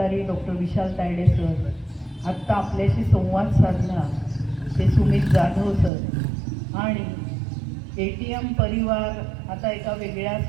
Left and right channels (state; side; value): drops out; left; at 5.9 s